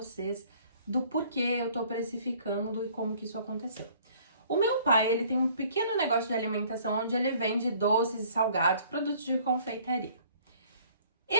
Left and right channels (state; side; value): inverted; both; correlation -0.56